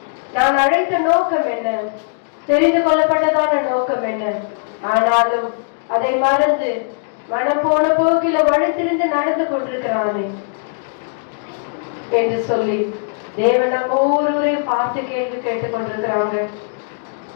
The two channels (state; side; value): silent; right; digital silence